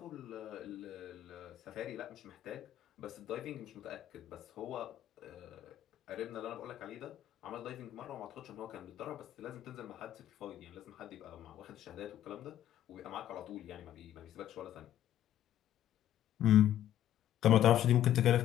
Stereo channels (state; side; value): quieter; right; 11.8 dB